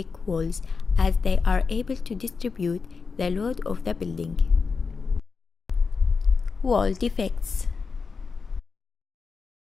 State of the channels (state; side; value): quieter; right; 4.9 dB